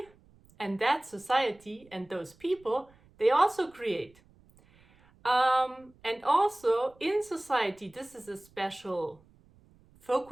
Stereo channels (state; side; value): noise; right; rumble, 29 dB below the sound